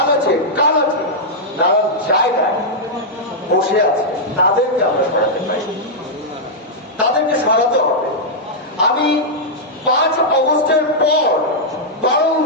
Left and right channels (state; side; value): normal; both; correlation -0.07